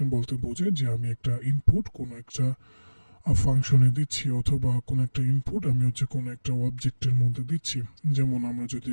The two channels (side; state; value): both; inverted; correlation -1.00